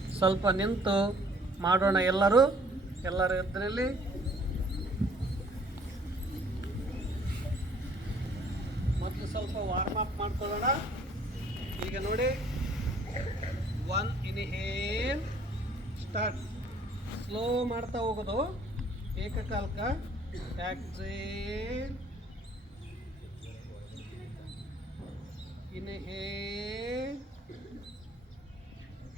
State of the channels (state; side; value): normal; both; correlation 0.58